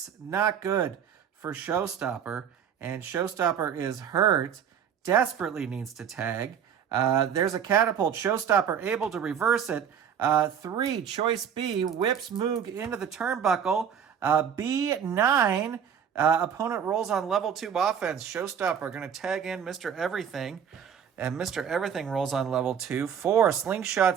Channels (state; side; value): quieter; left; 8.0 dB